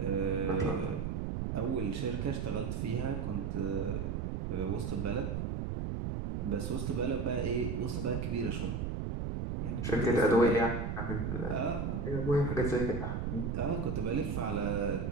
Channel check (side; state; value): right; noise; rumble, 2 dB below the sound